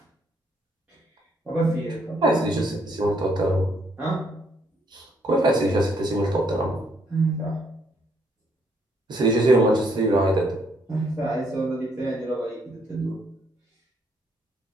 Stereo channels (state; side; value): normal; both; correlation 0.70